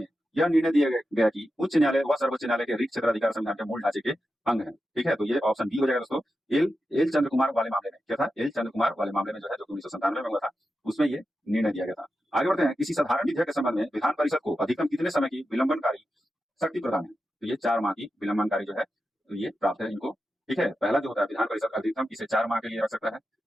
यह निर्णय दिया गया कि उच्च न्यायालय व सर्वोच्च न्यायालय के रिक्त क्षेत्राधिकार संविधान के मूल ढांचे के अंग है। ठीक है, तो ये ऑप्शन बी हो जाएगा दोस्तों, एल चंद्र कुमार वाले मामले में क्या था, एल चंद्र कुमार वाले मामले में जो है, जो 1997 में हुआ था, उसमें ये निर्णय दिया गया था। आगे बढ़ते हैं, किसी साधारण विधेयक के संबंध में विधान परिषद को अधिकतम कितने समय की विलंबनकारी शक्ति प्रदान है, तो ये 4 माह की विलंबनकारी जो है, तो ये प्राप्त है इनको। ठीक है, पहला जो होता है विधान परिषद अधिकतम इसे 4 माह के लिए रख सकता है,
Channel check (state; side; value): normal; both; correlation 0.90